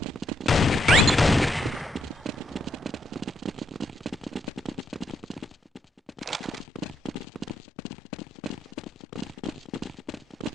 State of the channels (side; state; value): both; normal; correlation 0.78